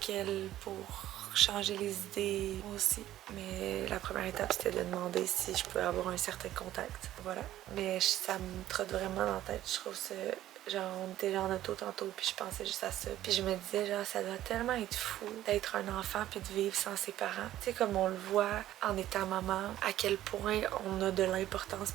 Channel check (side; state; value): left; quieter; 13.4 dB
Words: elle pour changer les idées aussi. Mais la première étape, c'était de demander si je pouvais avoir un certain contact. Voilà. Mais ça me trotte vraiment dans la tête. Je trouve ça... Genre, on était en auto tantôt, puis je pensais juste à ça. Puis je me disais, genre, ça doit tellement être fou d'être un enfant puis de vivre sans ses parents. Tu sais, comme on le voit en étant maman, à quel point on a de l'importance